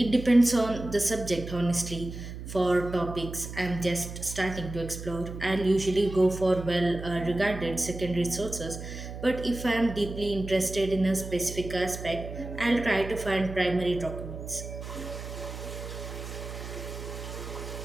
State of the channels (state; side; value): noise; right; hum, 9 dB below the sound